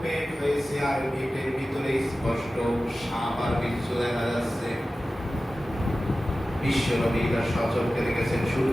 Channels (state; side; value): normal; both; correlation 0.95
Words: পেট হয়েছে, আর পেটের ভিতরে স্পষ্ট সাপ আর বিচ্ছু দেখা যাচ্ছে। বিশ্বনবী তার সচক্ষে দেখেছেন